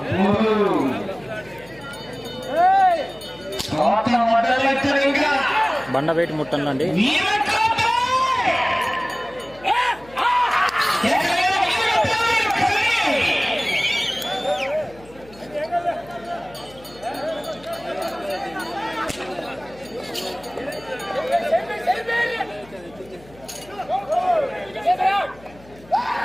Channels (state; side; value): noise; left; hum, 23 dB below the sound